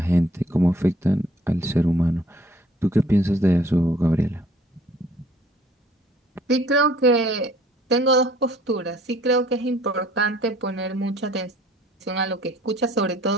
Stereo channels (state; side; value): normal; both; correlation 0.57